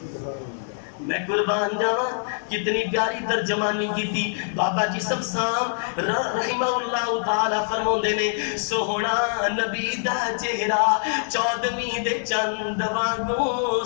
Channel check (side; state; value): right; silent; digital silence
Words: میں قربان جاواں کتنی پیاری ترجمانی کی تھی. بابا جی سمسام رحمہ اللہ تعالی فرماندے نے, سوہنا نبی دا چہرہ چودھویں دے چند وانگوں,